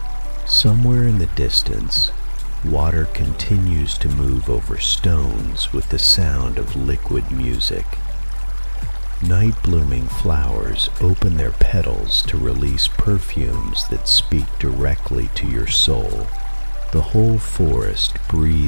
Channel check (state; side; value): inverted; both; correlation -1.00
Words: Somewhere in the distance, water continues to move over stones with the sound of liquid music. Night-blooming flowers open their petals to release perfumes that speak directly to your soul. The whole forest